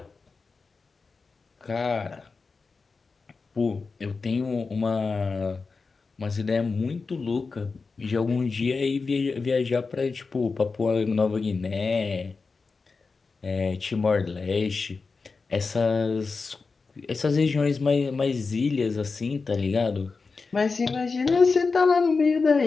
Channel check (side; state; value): right; quieter; 4.4 dB